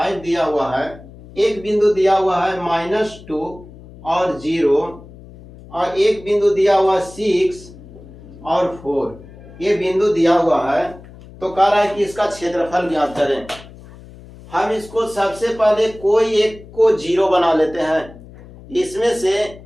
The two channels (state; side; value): noise; left; hum, 19 dB below the sound